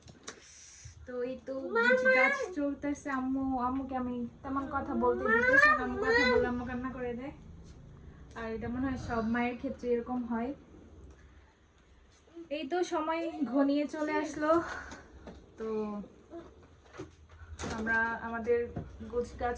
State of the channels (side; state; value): both; identical; correlation 1.00